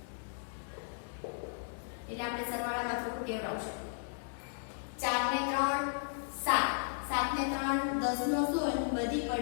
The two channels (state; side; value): silent; right; digital silence